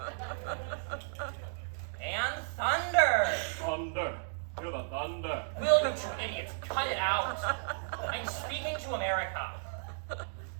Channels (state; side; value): silent; left; digital silence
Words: and thunder. Thunder. Hear the thunder. Will you two idiots cut it out? I'm speaking to America.